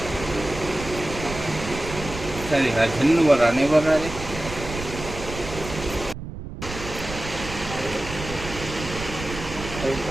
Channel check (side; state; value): right; noise; rumble, 10 dB below the sound